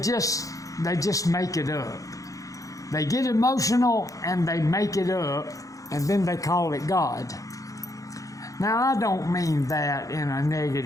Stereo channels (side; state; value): right; late; 0.16 ms